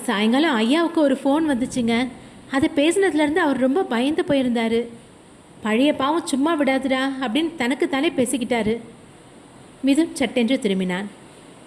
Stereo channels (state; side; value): identical; both; correlation 1.00